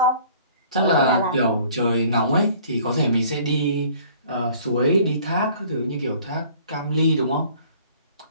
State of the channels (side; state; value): both; inverted; correlation -0.53